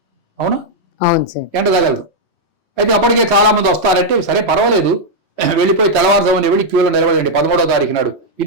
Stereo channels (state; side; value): normal; both; correlation -0.03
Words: అవునా? అవును సార్, ఎండ తగలదు. అయితే అప్పటికే చాలా మంది వస్తారంటే సరే పర్వాలేదు, వెళ్ళిపోయి తెల్లవారుజామున వెళ్ళి క్యూలో నిలబడండి 13వ తారీఖు నాడు.